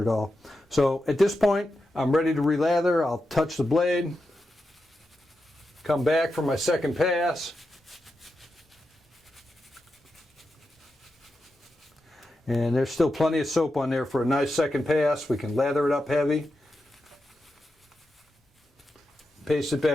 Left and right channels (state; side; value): normal; both; correlation 0.89